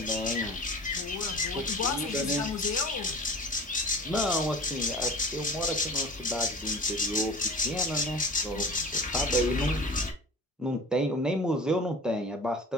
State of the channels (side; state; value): both; normal; correlation 0.39